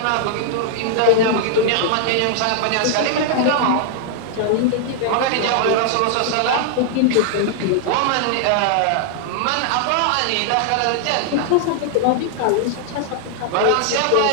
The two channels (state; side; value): different; both; correlation -0.01